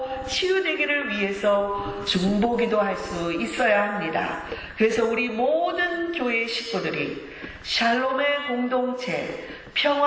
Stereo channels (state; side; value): identical; both; correlation 1.00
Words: 치유되기를 위해서 중보기도 할 수 있어야 합니다. 그래서 우리 모든 교회 식구들이 샬롬의 공동체,